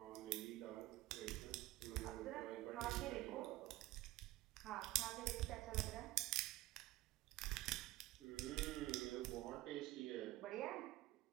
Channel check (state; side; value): quieter; left; 17.3 dB